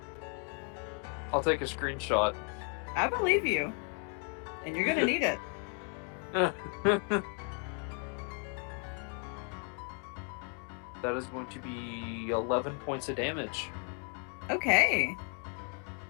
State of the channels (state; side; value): quieter; right; 36.7 dB